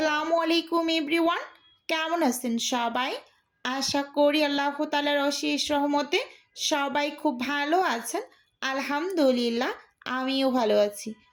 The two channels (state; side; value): identical; both; correlation 1.00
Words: আলাইকুম এভরিওয়ান, কেমন আছেন সবাই? আশা করি আল্লাহ তাআলার অশেষ রহমতে সবাই খুব ভালো আছেন। আলহামদুলিল্লাহ, আমিও ভালো আছি।